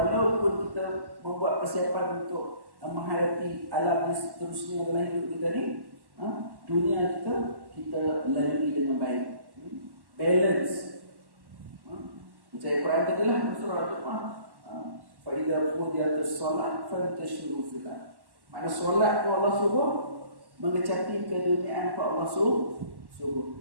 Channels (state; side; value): late; left; 1.1 ms